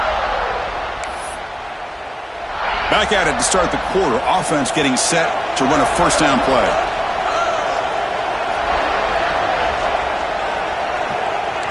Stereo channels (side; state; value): both; identical; correlation 1.00